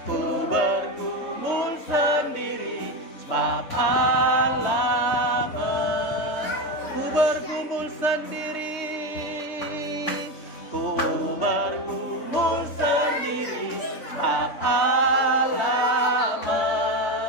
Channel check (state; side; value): late; right; 3.2 ms